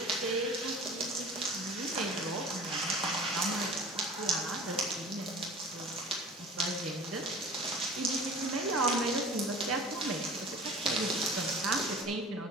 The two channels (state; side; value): normal; both; correlation 0.41